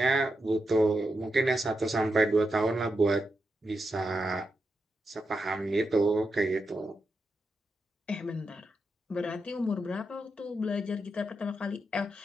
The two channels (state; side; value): normal; both; correlation 0.86